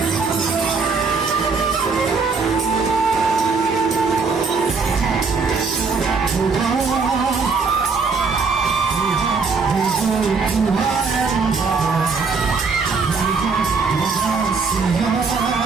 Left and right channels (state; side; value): quieter; left; 4.7 dB